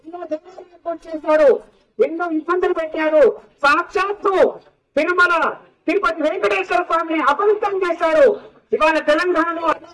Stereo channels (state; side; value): identical; both; correlation 1.00